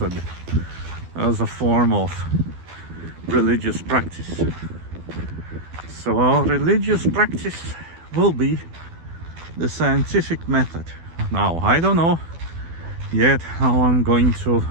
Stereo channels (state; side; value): late; left; 12 ms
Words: as a form of religious practice. So our religious practice will be the scientific method. Now, I don't know yet how I'm going to